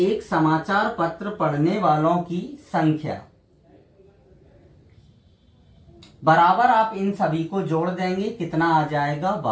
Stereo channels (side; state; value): both; identical; correlation 1.00